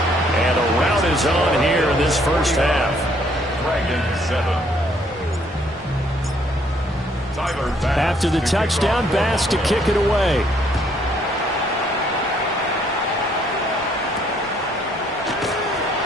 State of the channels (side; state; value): both; normal; correlation 0.66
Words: And a rout is on here in this first half. After the touchdown, Bass to kick it away.